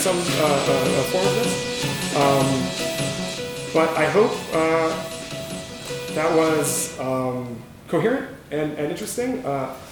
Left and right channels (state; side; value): identical; both; correlation 1.00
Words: form of this. But I hope that was coherent and interesting.